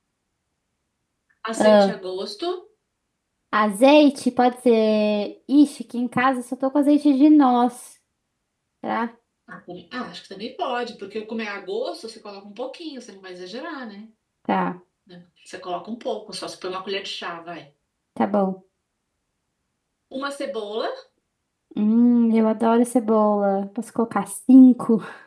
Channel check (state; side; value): identical; both; correlation 1.00